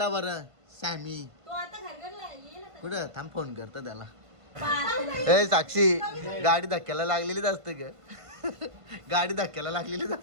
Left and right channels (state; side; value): late; left; 1.5 ms